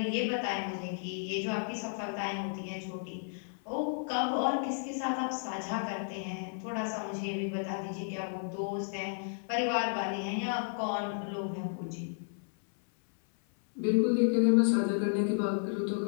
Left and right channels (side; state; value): right; silent; 56 dB below the other